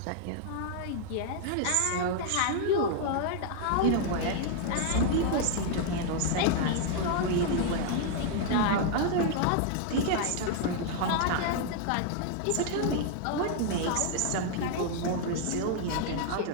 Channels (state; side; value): different; both; correlation 0.00